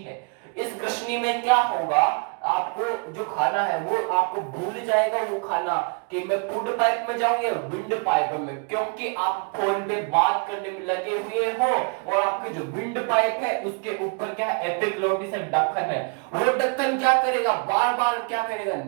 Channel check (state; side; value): quieter; left; 37.3 dB